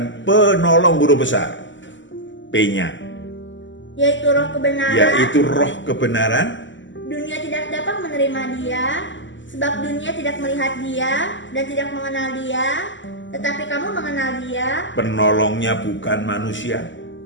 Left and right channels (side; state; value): right; late; 0.54 ms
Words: penolong guru besar, P-nya, yaitu roh kebenaran. Yaitu roh kebenaran. Dunia tidak dapat menerima Dia, sebab dunia tidak melihat Dia dan tidak mengenal Dia, tetapi kamu mengenal Dia. Penolongnya bukan manusia,